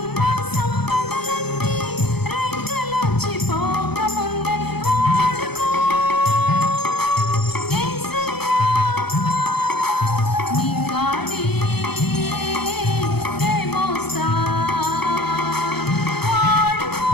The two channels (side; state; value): right; late; 0.98 ms